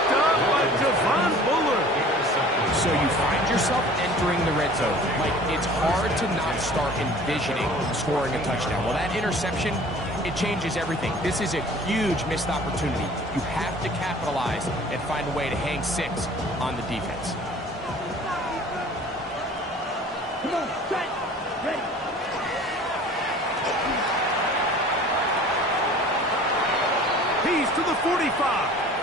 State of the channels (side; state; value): both; normal; correlation 0.47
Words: up by Javon Bullard. So you find yourself entering the red zone. Like, it's hard to not start envisioning scoring a touchdown. Well, that interception, it changes everything. This is a huge missed opportunity. You have to capitalize and find a way to hang 6 on the defense. Come on, set, ready. He's to the 45.